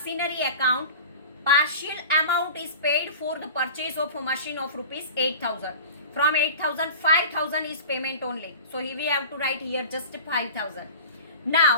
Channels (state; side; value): inverted; both; correlation -0.36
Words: account partial amount is paid for the purchase of a machine of rupees 8,000. From 8,000 5,000 is payment only. So we have to write here just 5,000.